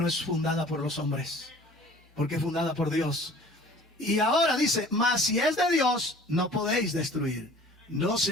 es fundada por los hombres, porque es fundada por Dios. Y ahora dice, mas si es de Dios, no podéis destruir. No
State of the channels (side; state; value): both; normal; correlation 0.48